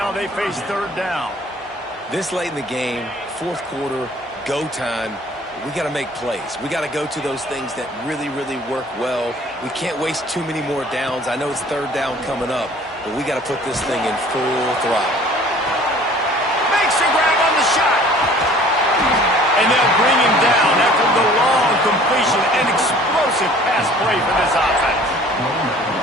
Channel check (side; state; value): both; normal; correlation 0.51